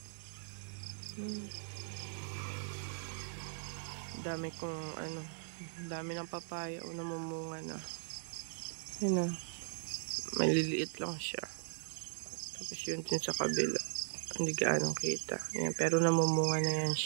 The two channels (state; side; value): silent; left; digital silence